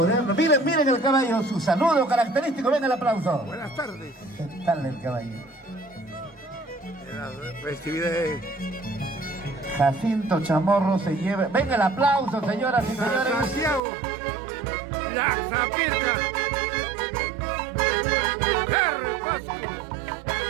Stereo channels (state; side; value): drops out; left; at 13.8 s